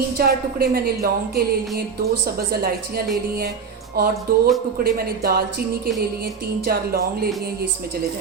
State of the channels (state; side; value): quieter; left; 5.9 dB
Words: टुकड़े मैंने लौंग के ले लिए, 2 सब्ज़ इलायचियाँ ले ली हैं और 2 टुकड़े मैंने दालचीनी के ले लिए, 3-4 लौंग ले लिए। ये इसमें चले